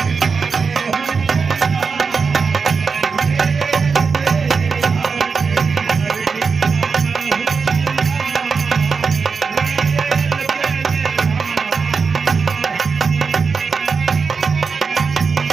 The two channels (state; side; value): quieter; left; 5.2 dB